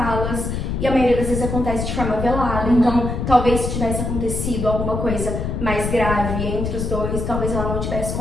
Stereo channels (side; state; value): left; noise; rumble, 3 dB below the sound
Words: e a maioria das vezes acontece de forma velada. Então, talvez se tivesse acontecido alguma coisa mais grave entre os dois, talvez ela não tivesse